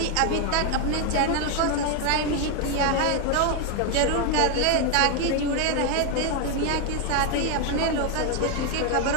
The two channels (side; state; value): both; different; correlation 0.01